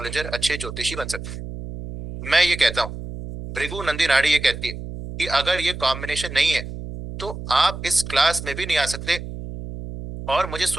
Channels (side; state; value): right; noise; hum, 9 dB below the sound